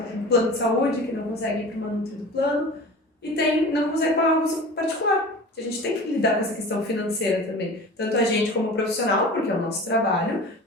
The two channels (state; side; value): normal; both; correlation 0.37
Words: um plano de saúde que não consegue ir para uma nutri do plano e não consegue pagar uma consulta particular. A gente tem que lidar com essa questão financeira também, tanto a gente como profissional, porque é o nosso trabalho,